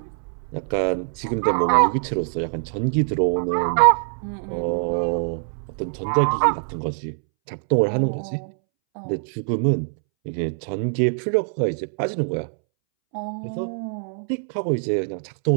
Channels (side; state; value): left; silent; 63 dB below the other